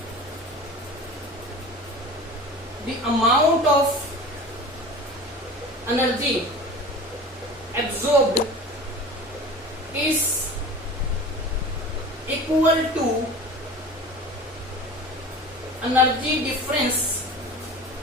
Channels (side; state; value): both; normal; correlation 0.37